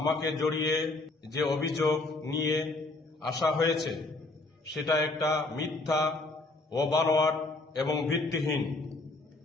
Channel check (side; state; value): right; quieter; 3.1 dB